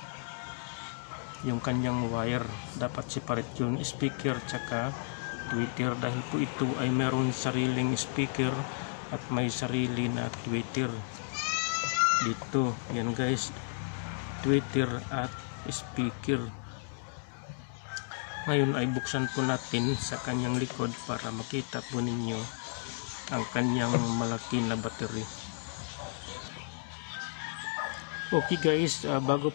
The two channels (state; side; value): silent; right; digital silence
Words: Yung kanyang wire dapat separate, yung speaker tsaka tweeter, dahil po ito ay meron sariling speaker at may sarili na tweeter dito. Yan guys, tweeter at speaker. Ngayon ay buksan po natin sa kanyang likod para makita po ninyo ang kanyang malaki na battery. Okay guys, bago